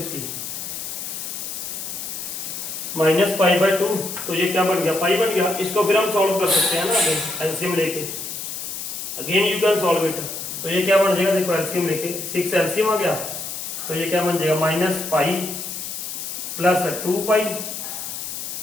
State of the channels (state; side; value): noise; left; hiss, 7 dB below the sound